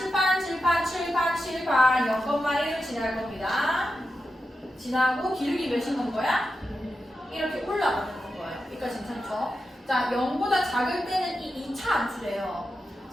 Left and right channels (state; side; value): normal; both; correlation 0.89